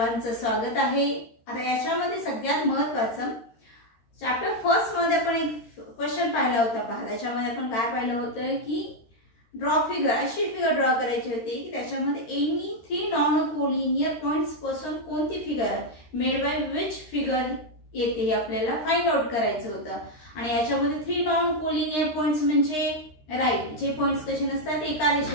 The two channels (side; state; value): right; late; 13 ms